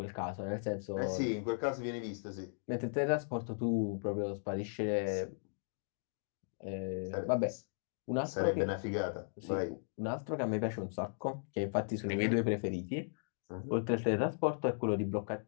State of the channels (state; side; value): silent; right; digital silence